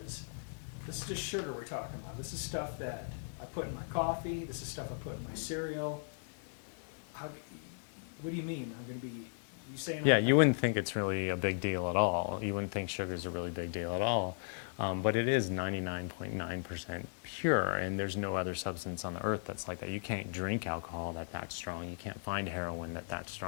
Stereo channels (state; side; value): silent; right; digital silence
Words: this is just sugar we're talking about. This is stuff that I put in my coffee. This is stuff I put in my cereal. What do you mean? I'm going to be, you saying? Yeah, you wouldn't think it's really a big deal at all. You wouldn't think sugar is a really big deal at all. But it is 99.9% pure, and there's no other substance on the earth that's like that. You can't drink alcohol that's strong. You can't find heroin that's